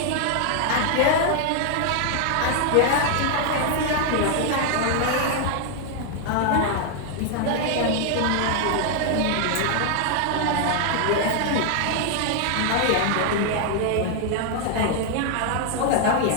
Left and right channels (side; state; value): both; different; correlation 0.00